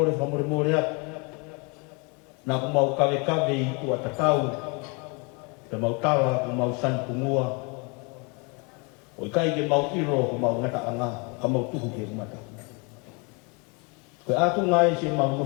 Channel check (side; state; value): right; quieter; 31.7 dB